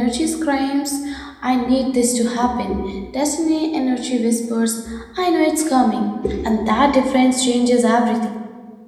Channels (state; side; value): identical; both; correlation 1.00